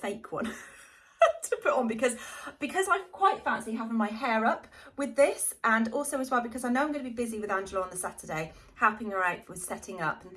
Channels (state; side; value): identical; both; correlation 1.00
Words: one to put on because I quite fancy having my hair up with this, and also as well because I know I'm going to be busy with Angela on the Saturday, helping her out with setting up and